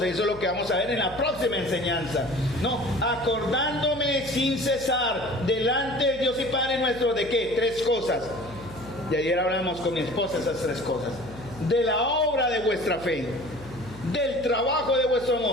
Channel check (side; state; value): left; noise; hum, 17 dB below the sound